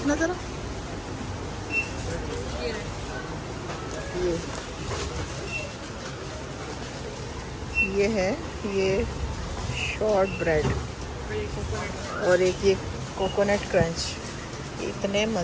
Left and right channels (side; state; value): both; identical; correlation 1.00